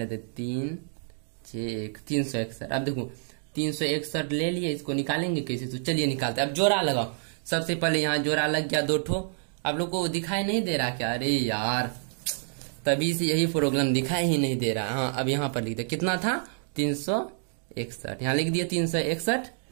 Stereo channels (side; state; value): left; silent; 59 dB below the other